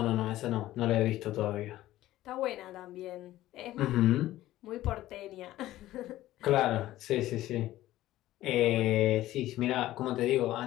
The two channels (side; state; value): right; quieter; 15.1 dB